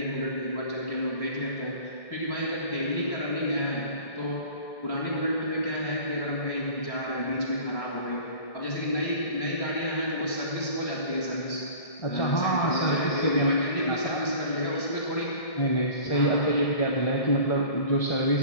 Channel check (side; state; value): right; late; 1.6 ms